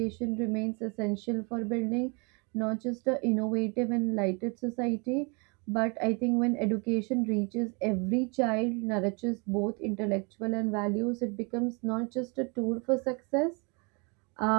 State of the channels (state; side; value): quieter; left; 32.4 dB